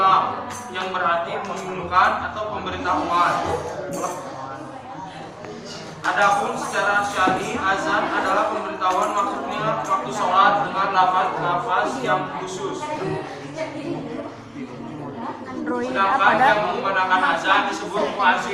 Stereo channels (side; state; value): both; identical; correlation 1.00